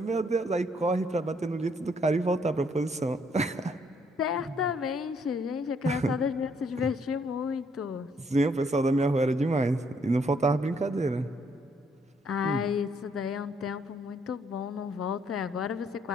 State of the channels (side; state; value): both; normal; correlation 0.69